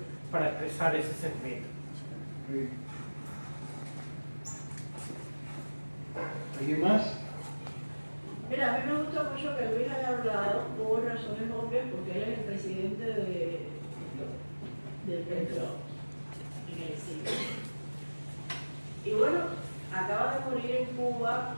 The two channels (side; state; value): both; inverted; correlation -1.00